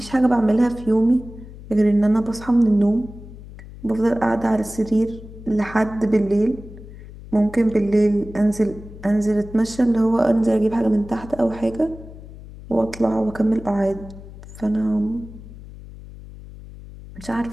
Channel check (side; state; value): left; noise; hum, 16 dB below the sound